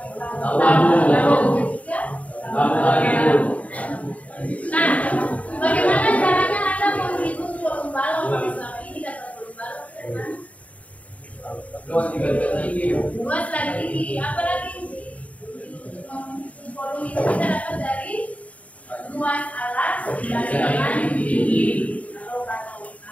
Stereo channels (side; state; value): right; late; 0.068 ms